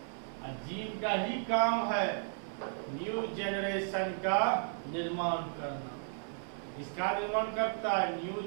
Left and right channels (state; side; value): silent; left; 55 dB below the other